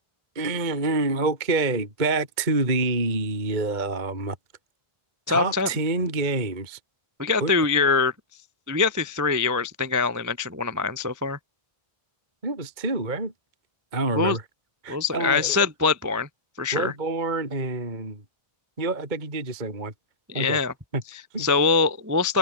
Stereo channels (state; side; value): late; left; 2.1 ms